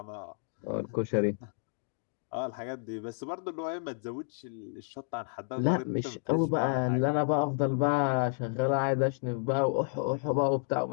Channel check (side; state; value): right; silent; digital silence